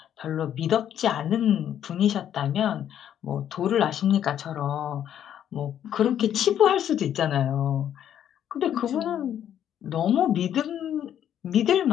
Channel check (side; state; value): right; quieter; 10.1 dB